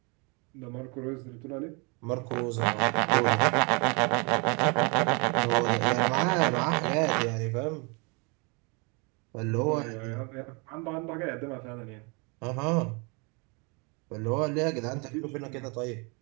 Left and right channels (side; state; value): left; quieter; 31.6 dB